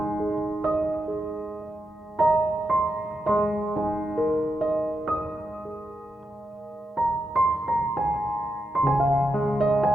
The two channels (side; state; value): both; normal; correlation 0.86